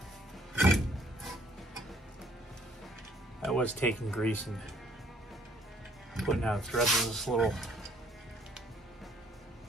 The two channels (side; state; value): both; normal; correlation 0.62